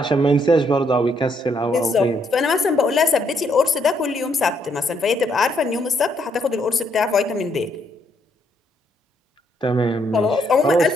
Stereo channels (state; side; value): normal; both; correlation 0.73